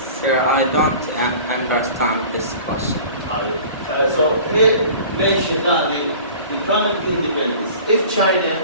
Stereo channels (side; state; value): both; inverted; correlation -0.44